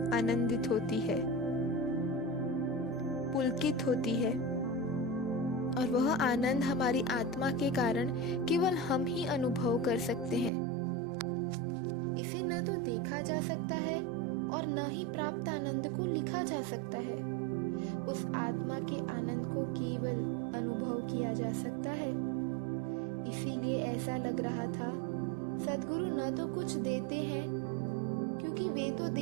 आनंदित होती है, पुलकित होती है और वह आनंद हमारी आत्मा के कारण केवल हम ही अनुभव कर सकते हैं। इसे न तो देखा जा सकता है और न ही प्राप्त आनंद को लिखा जा सकता है। उस आत्मा के आनंद को केवल अनुभव किया जा सकता है। इसीलिए ऐसा लग रहा था सद्गुरु न तो कुछ देते हैं, क्योंकि वे तो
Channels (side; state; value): left; drops out; at 10.5 s